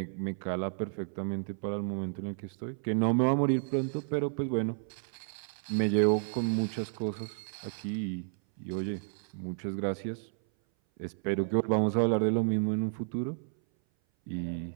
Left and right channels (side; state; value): left; silent; 57 dB below the other